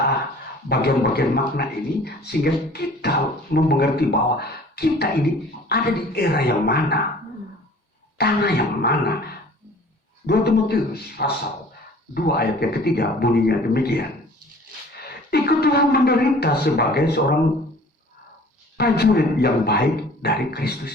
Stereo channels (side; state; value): both; normal; correlation 0.49